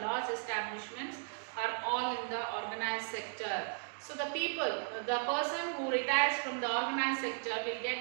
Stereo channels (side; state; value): left; silent; digital silence